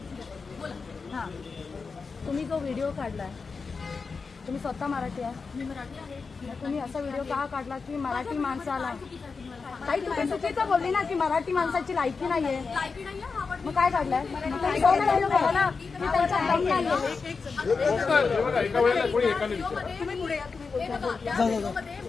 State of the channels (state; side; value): quieter; right; 4.8 dB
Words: हा तुम्ही जो व्हिडिओ काढलाय तुम्ही स्वतः मराठी आहे? मी मराठी आहे. तुम्ही असा व्हिडिओ का काढला की मराठी माणसाला काही तुम्ही चुकीचं बोलली ना की मराठी माणसाची लायकी नाहीये लायकी नाहीये हा पण मग काय काढलंय ना की त्यांचा दम नाहीये तुम्ही पुढे या